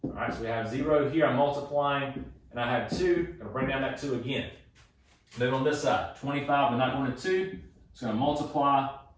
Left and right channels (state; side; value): identical; both; correlation 1.00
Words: All right, so we have 0 here. I'm multiplying, and I have 2. I'm going to bring down that 2 again. Then on this side, 25, we're not going to 2. It's going to multiply,